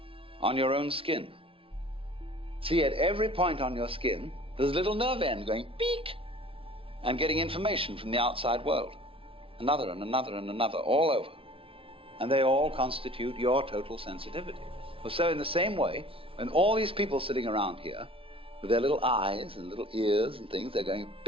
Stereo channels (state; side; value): late; left; 0.26 ms